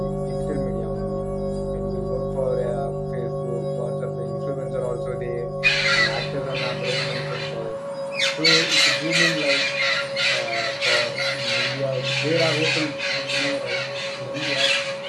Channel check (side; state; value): both; identical; correlation 1.00